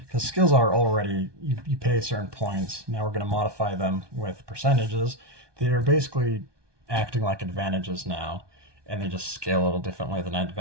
skills are already, you pay certain points. Now we're going to modify them with percentages. They're basically acting like advantages now, and they just scale a little differently than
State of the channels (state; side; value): late; left; 1.2 ms